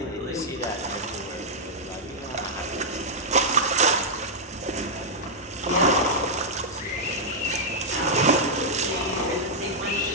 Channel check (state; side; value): normal; both; correlation -0.06